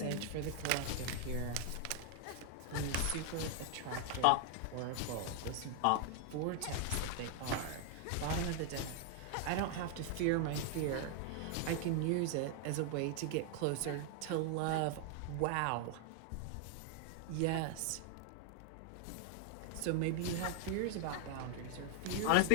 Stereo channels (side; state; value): both; different; correlation 0.00